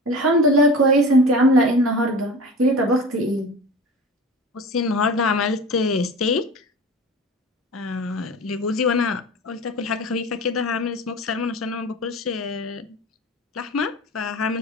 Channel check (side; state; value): both; normal; correlation 0.35